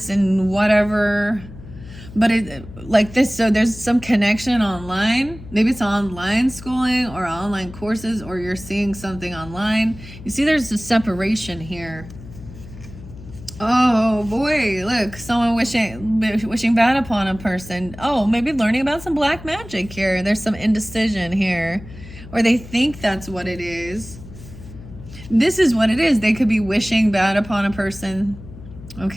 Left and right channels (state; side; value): noise; left; hum, 16 dB below the sound